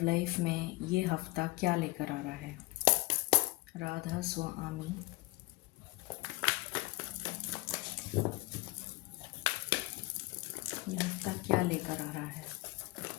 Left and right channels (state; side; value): quieter; right; 21.9 dB